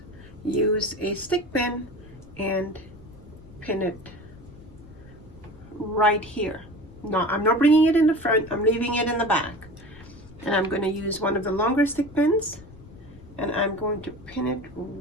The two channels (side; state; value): left; noise; rumble, 20 dB below the sound